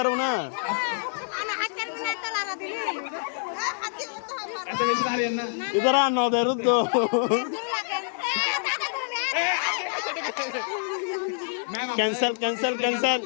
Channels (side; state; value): right; silent; 59 dB below the other